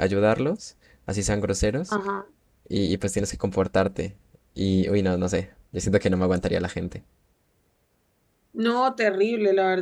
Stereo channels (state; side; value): identical; both; correlation 1.00